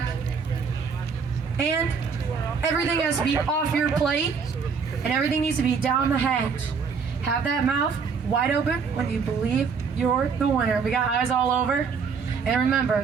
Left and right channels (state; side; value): quieter; left; 5.7 dB